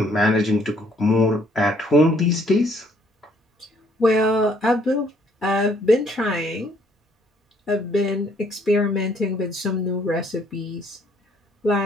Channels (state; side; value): normal; both; correlation 0.65